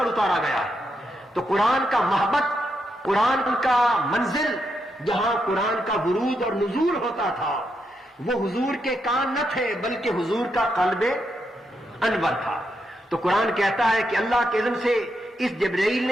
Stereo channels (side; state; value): both; normal; correlation 0.82